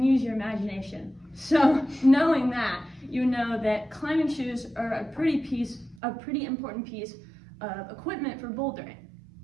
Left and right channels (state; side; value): drops out; left; at 6.0 s